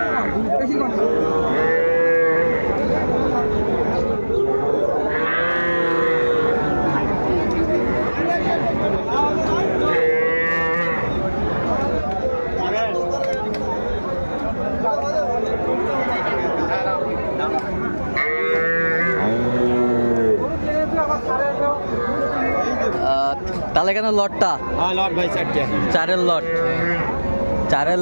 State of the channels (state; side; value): inverted; both; correlation -1.00